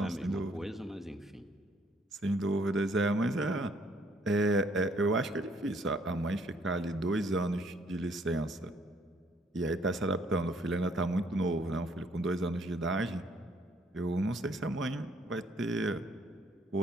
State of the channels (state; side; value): normal; both; correlation 0.65